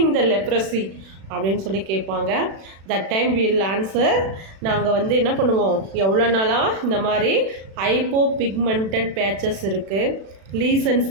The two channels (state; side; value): late; left; 36 ms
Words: the leprosy அப்படின்னு சொல்லி கேட்பாங்க. That time will answer. நாங்கள் வந்து என்ன பண்ணுவோம், எவ்வளோ நாளாக இந்த மாதிரி ஹைப்போ பிக்மெண்டட் பேச்சஸ் இருக்குது, லீசன்ஸ்